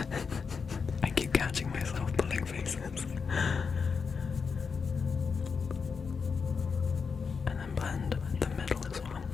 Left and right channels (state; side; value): quieter; right; 5.5 dB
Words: I keep catching myself pulling faces. And then blend the middle as well.